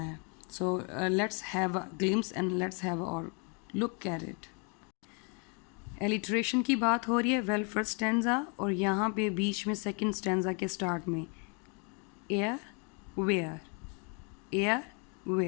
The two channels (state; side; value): quieter; right; 36.0 dB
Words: ہے. So let's have a glimpse and let's have اور لک ایٹ اٹ. ایلیٹریشن کی بات ہو رہی ہے. ویل فرسٹ اسٹینزا اور یہاں پہ بیچ میں سیکنڈ اسٹینزا کے اسٹارٹ میں ایئر ویئر, ایئر